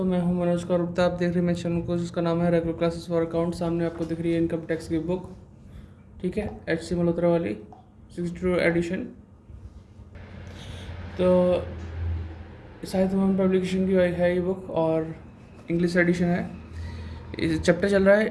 मैं हूं मनोज कौर गुप्ता। आप देख रहे हैं मेरे चैनल को जिसका नाम है रेगुलर क्लासेस फॉर अकाउंट। सामने आपको दिख रही है इनकम टैक्स की बुक, ठीक है, HC मल्होत्रा वाली 62 एडिशन। तो साहित्य भवन पब्लिकेशन की है ये बुक और इंग्लिश एडिशन है। चैप्टर चल रहा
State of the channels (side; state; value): both; identical; correlation 1.00